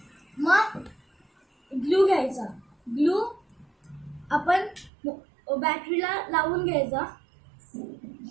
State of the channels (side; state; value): left; drops out; at 4.9 s